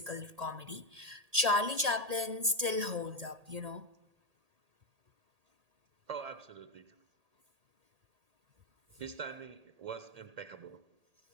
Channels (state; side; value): late; left; 1.8 ms